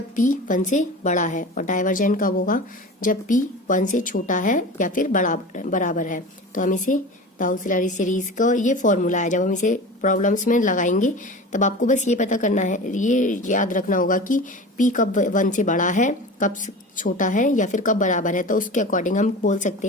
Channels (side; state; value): both; normal; correlation 0.33